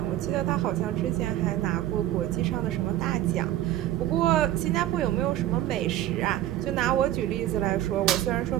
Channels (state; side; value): quieter; left; 13.4 dB